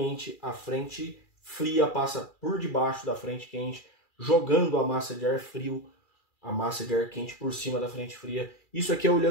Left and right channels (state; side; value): late; right; 2.3 ms